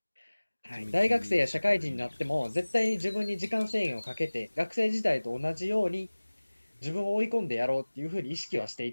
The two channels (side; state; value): both; inverted; correlation -1.00